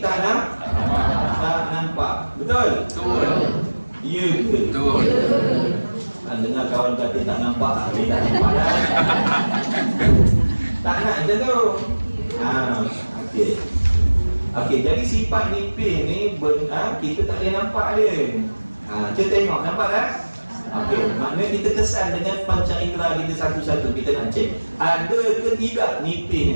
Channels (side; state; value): both; inverted; correlation -1.00